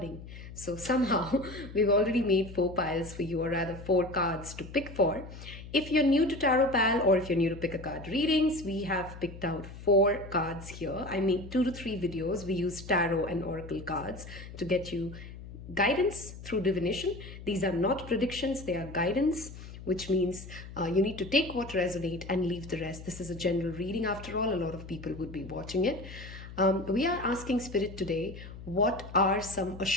So somehow we've already made 4 piles for you, or rather 4 cards to pick for. If you're new to Tarot Pal or if you're new to pick a card readings, we have picked out 4 cards here. I made 2 to 3 videos. We use tarot and oracle cards to get you guidance through divination. These are not predictions, they are guidance, which means you need to take what resonates and leave the rest. This is a general reading after all. A lot of people would be watching it. We are asking Spirit today, what are some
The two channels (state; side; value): noise; left; hum, 13 dB below the sound